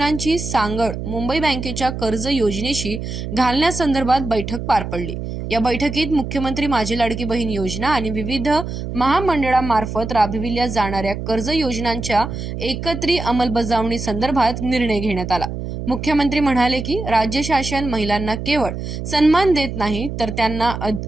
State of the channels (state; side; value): noise; right; hum, 6 dB below the sound